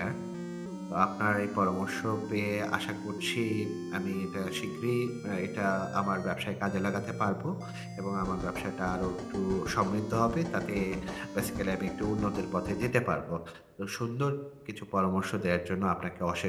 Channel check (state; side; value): identical; both; correlation 1.00